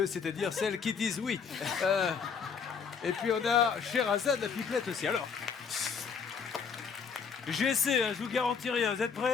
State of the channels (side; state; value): right; quieter; 6.2 dB